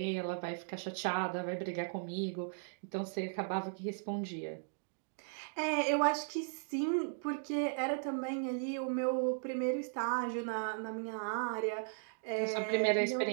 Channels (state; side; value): silent; left; digital silence